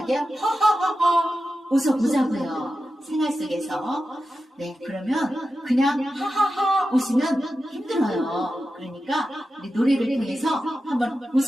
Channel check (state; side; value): normal; both; correlation 0.91